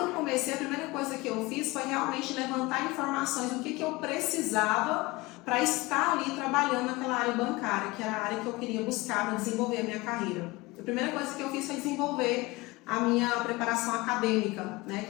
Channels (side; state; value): right; quieter; 22.1 dB